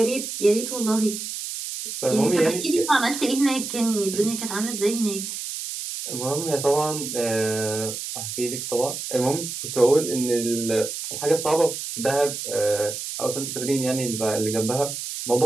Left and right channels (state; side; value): noise; right; hiss, 6 dB below the sound